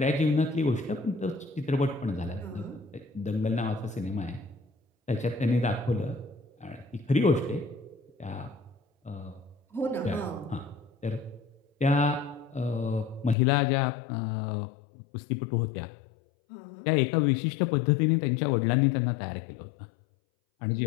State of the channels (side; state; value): right; drops out; at 13.4 s